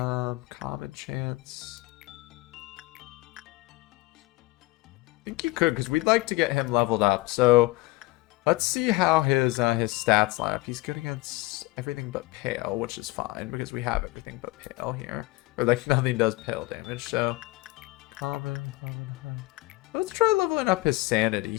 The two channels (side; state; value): right; quieter; 20.7 dB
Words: chance. I think you could, because we'd like to get him leveled up. So let's see how his stats line up. He's good against everything but pale, which is fine because we have everything but pale here. Or like nothing does pale damage. So common. Let's try leveling up his sanity